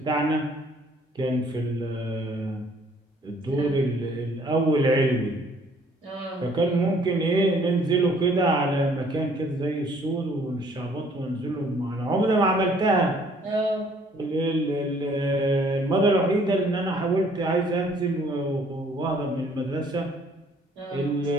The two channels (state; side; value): normal; both; correlation 0.60